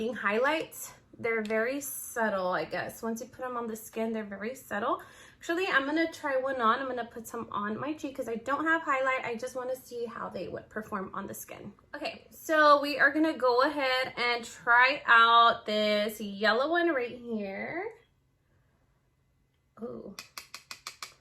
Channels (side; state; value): both; identical; correlation 1.00